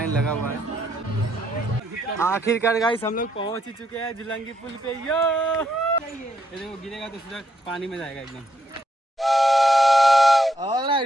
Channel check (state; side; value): normal; both; correlation 0.75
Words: लगा हुआ है। आखिरकार गाइस हम लोग पहुँच ही चुके हैं झुलंगी पुल पे। यो ये देखो, गिरेगा तो सीधा पानी में जाएगा एकदम।